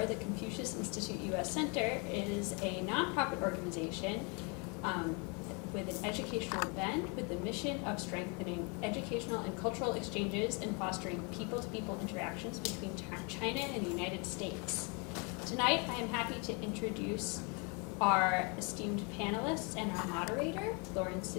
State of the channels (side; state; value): right; quieter; 33.0 dB